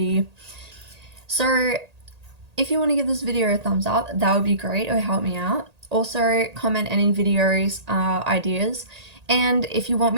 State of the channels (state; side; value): late; left; 1.8 ms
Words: So if you want to give this video a thumbs up, that would be great. It would help me out. Also comment any videos ideas. And if you want